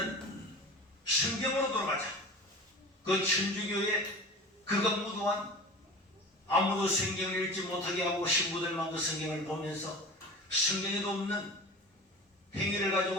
성경으로 돌아가자. 그 천주교의 그가 무도한 아무도 성경을 읽지 못하게 하고 신부들만 그 성경을 보면서 성경에도 없는 행위를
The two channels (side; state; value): both; normal; correlation 0.36